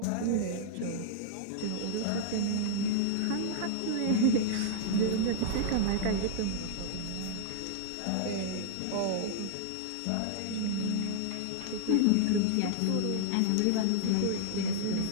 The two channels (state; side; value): different; both; correlation -0.01